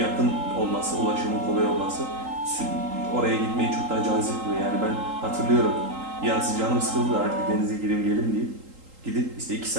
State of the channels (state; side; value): late; left; 3.8 ms